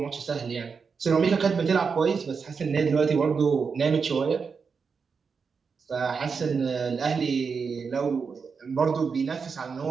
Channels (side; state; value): left; quieter; 5.5 dB